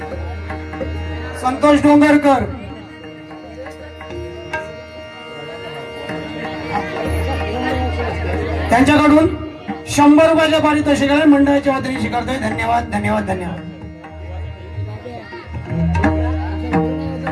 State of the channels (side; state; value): both; identical; correlation 1.00